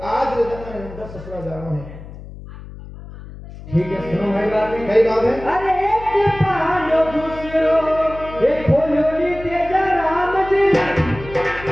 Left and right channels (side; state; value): left; noise; hum, 15 dB below the sound